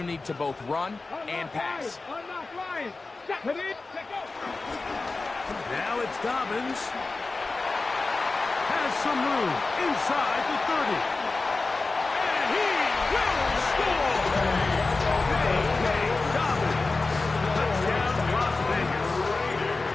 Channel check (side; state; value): right; quieter; 3.6 dB